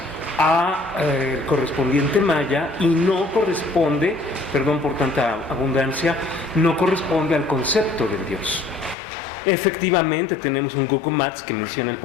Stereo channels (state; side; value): drops out; right; at 9.0 s